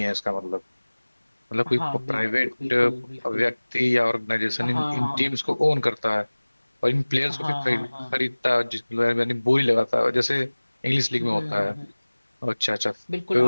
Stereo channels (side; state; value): both; inverted; correlation -1.00